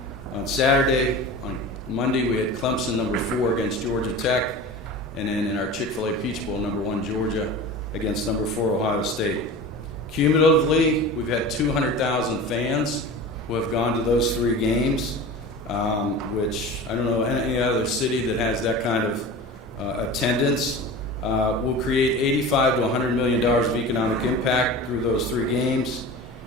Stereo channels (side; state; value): both; normal; correlation 0.33